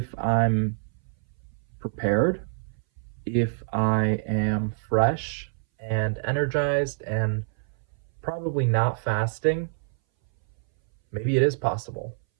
I'm prepared, if I am fresh and energized and probably not fasting, maybe it is possible.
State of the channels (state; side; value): silent; left; 60 dB below the other